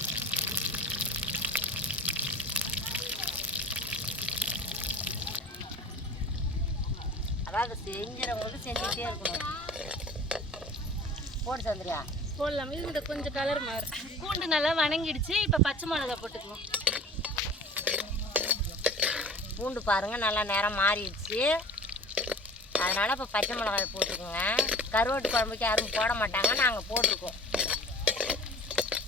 அதாவது செஞ்சுறவங்களுக்கு செஞ்சுக்கிட்டே இருக்கணும். போட்டு சந்திரியா போடலாம். இது கொஞ்சம் கலர் மாறு. பூண்டு நல்லா வணங்கிடுச்சு. இப்போ பச்சை மிளகா போட்டுக்குவோம். பூண்டு பாருங்க நல்லா நேரம் மாறிடுச்சு. அதனால இப்போ பச்சை மிளகாய் போட்டுக்கோங்க. கருவாட்டு குழம்புக்கு யாரும் போட மாட்டாங்க, நாங்கள் போட்டிருக்கோம்.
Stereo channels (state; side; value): normal; both; correlation 0.42